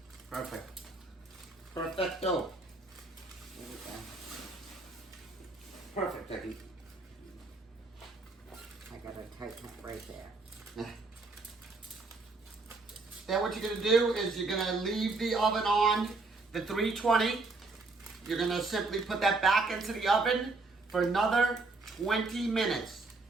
Perfect. Perfecto. There we go. Perfect, Vicky. I gotta tighten it right there. Now what you're going to do is you're going to leave the oven on the 320. You're going to simply put that back into the oven for another 20 minutes.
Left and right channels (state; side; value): quieter; left; 3.6 dB